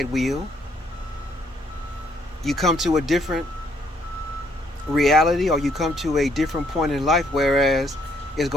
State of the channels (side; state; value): both; normal; correlation 0.68